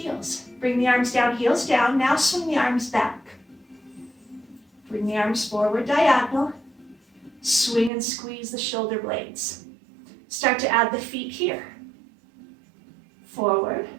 Bring the arms down, heels down. Now swing the arms back. Bring the arms forward, diagonal. Swing and squeeze the shoulder blades. Start to add the feet here. Forward,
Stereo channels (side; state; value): left; drops out; at 7.9 s